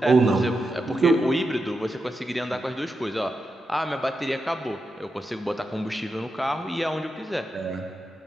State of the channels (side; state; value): both; normal; correlation 0.87